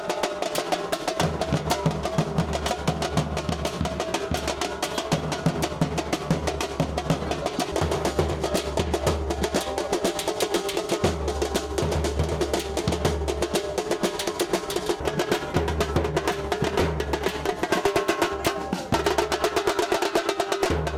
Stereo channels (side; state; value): both; identical; correlation 1.00